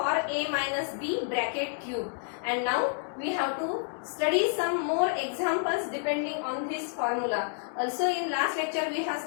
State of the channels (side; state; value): right; silent; digital silence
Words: a minus b bracket cube, and now we have to study some more examples depending on this formula. Also in last lecture we have